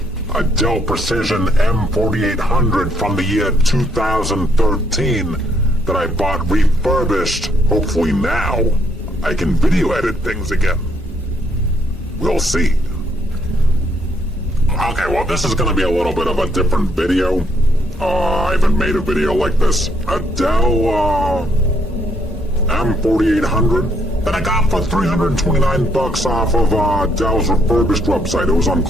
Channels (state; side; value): normal; both; correlation 0.72